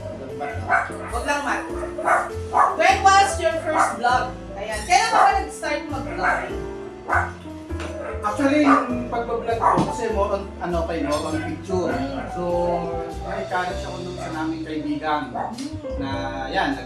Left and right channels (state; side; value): identical; both; correlation 1.00